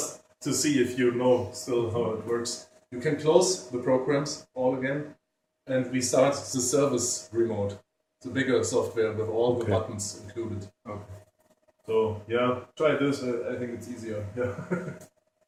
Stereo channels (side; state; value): both; identical; correlation 1.00